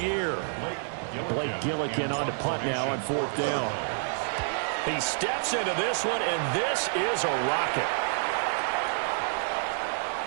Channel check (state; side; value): silent; left; 59 dB below the other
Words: Blake Gillikin on to punt now on 4th down. He steps into this one, and this is a rocket.